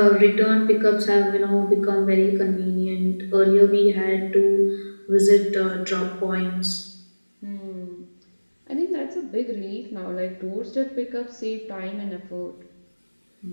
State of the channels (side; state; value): both; inverted; correlation -1.00